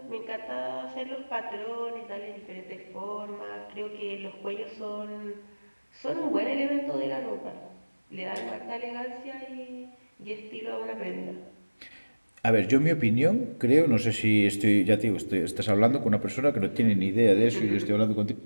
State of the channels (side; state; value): both; inverted; correlation -1.00